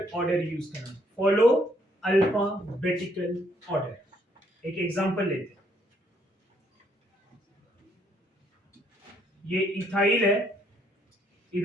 ऑर्डर यूज करना, फॉलो अल्फाबेटिकल ऑर्डर। एक एग्जांपल लेते हैं, ये इथाइल है,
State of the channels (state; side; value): normal; both; correlation 0.69